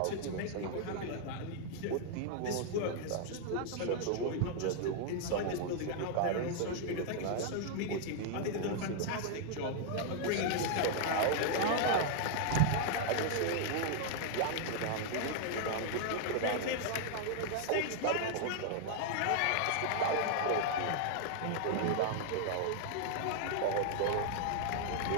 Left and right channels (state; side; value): different; both; correlation 0.00